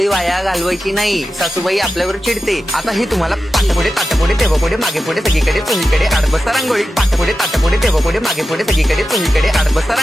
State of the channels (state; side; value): normal; both; correlation 0.92